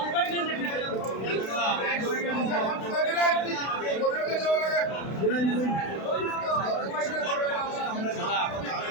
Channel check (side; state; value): right; late; 32 ms